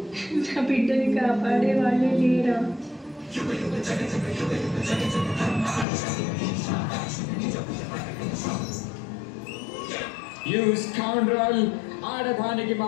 నా బిడ్డని కాపాడే వాళ్ళే లేరా? You scoundrel! ఆడదానికి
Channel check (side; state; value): right; drops out; at 5.9 s